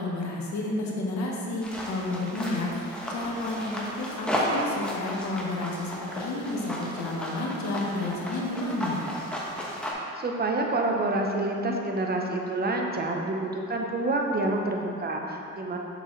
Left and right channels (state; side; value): normal; both; correlation 0.30